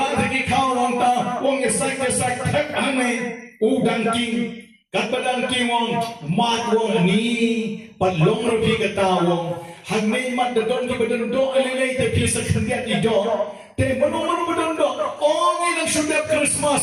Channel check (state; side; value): identical; both; correlation 1.00